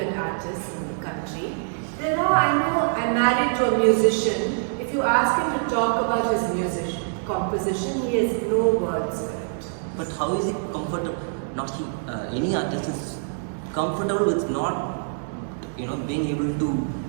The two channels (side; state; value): left; silent; digital silence